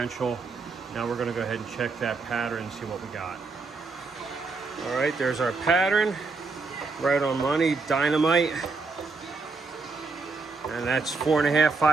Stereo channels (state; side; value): quieter; left; 4.1 dB